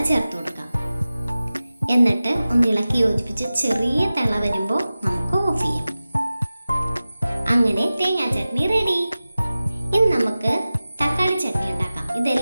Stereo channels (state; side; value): inverted; both; correlation -0.96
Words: ചേർത്ത് കൊടുക്കാം. എന്നിട്ട് ഒന്ന് ഇളക്കി യോജിപ്പിച്ച് ചെറിയ തിള വരുമ്പോൾ നമുക്ക് ഓഫ് ചെയ്യാം. അങ്ങനെ തേങ്ങാ ചട്നി റെഡി. ഇനി നമുക്ക് തക്കാളി ചട്നി ഉണ്ടാക്കാം.